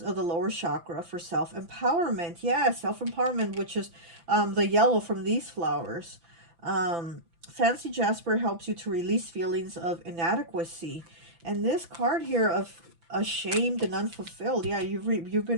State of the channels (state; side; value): late; left; 5.9 ms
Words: of the lower chakra for self-empowerment. Yeah, self-empowerment, which is the yellow from these flowers. Fancy Jasper helps you to release feelings of inadequacy. And this card here of ashamed and unfulfilled, yeah, you've